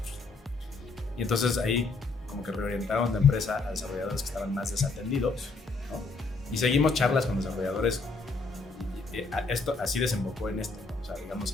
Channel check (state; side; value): quieter; right; 3.8 dB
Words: ¿no? Y entonces ahí como que reorientaron la empresa a desarrolladores que estaban más desatendidos, ¿no? Y seguimos charlas con desarrolladores. Esto así desembocó en esto, ¿no? O sea,